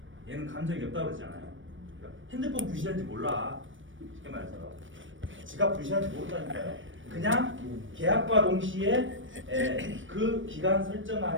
얘는 감정이 없다고 그러잖아요. 그러니까 핸드폰 분실한지 몰라. 쉽게 말해서 지갑 분실한지 모른다니까요. 그냥 계약과 동시에 그 기간 설정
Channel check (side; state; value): left; late; 0.56 ms